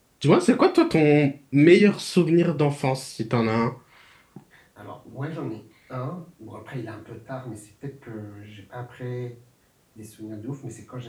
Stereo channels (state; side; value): identical; both; correlation 1.00